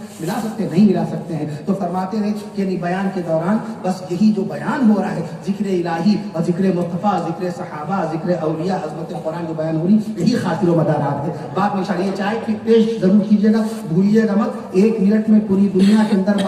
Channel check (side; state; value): both; identical; correlation 1.00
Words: ملا سکتے ہیں؟ نہیں ملا سکتے ہیں۔ تو فرماتے ہیں کہ بیان کے دوران بس یہی جو بیان ہو رہا ہے، ذکر الہی اور ذکر مصطفیٰ، ذکر صحابہ، ذکر اولیاء، عظمت قرآن جو بیان ہو رہی، یہی خاطر و مدارات ہے۔ بعد میں شاید یہ چائے کی پیش ضرور کیجیے گا، بھولیے گا مت۔ 1 منٹ میں پوری دنیا کے اندر